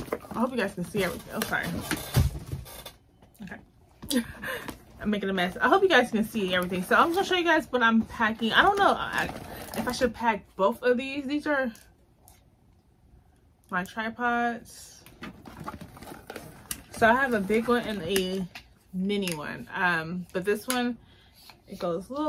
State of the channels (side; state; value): both; identical; correlation 1.00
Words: I hope you guys can see everything. Oh, sorry. Okay. I'm making a mess. I hope you guys can see everything. So I'm gonna show you guys what I'm packing. I don't know if I should pack both of these. These are my tripods. So I have a big one and a mini one. But this one, it goes a